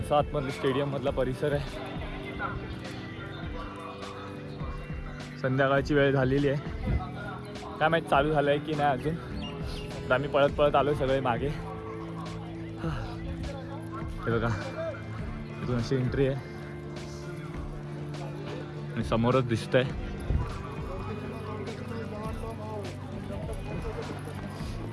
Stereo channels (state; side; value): identical; both; correlation 1.00